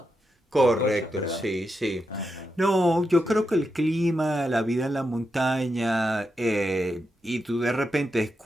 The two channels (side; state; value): both; normal; correlation 0.86